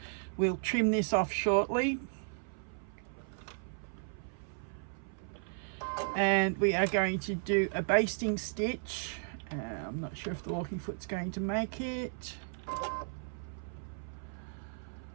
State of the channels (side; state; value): left; silent; 54 dB below the other